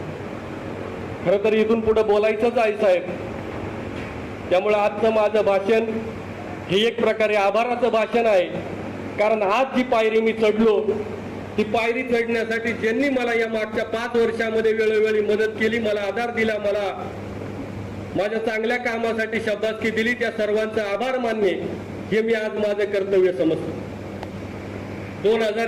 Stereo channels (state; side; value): identical; both; correlation 1.00